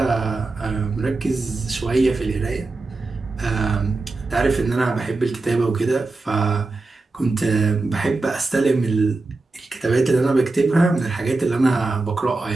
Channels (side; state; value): left; quieter; 3.4 dB